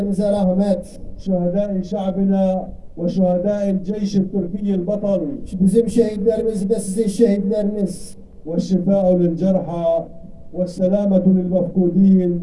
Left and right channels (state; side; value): identical; both; correlation 1.00